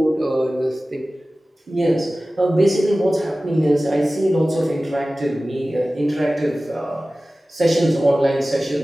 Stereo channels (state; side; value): normal; both; correlation 0.97